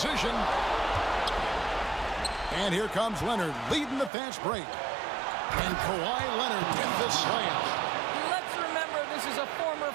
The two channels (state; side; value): drops out; left; at 4.1 s